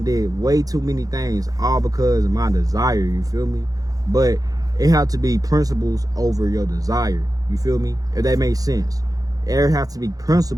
did way too many things, all because of my desire. You feel me? But it have to be principles over your desire. You feel me? If that makes sense. There have to be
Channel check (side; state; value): left; late; 0.17 ms